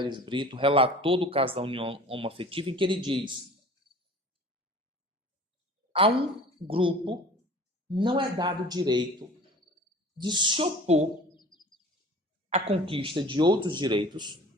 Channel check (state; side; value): normal; both; correlation 0.43